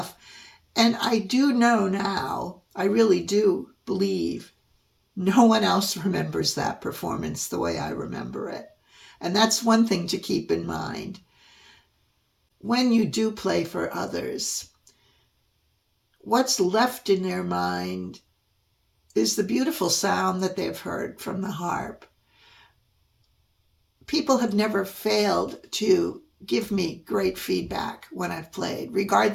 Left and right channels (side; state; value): both; identical; correlation 1.00